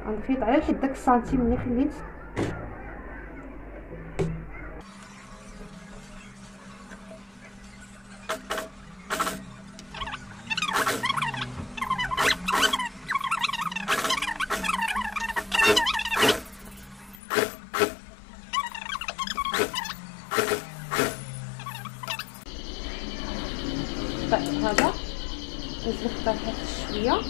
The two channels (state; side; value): drops out; right; at 17.2 s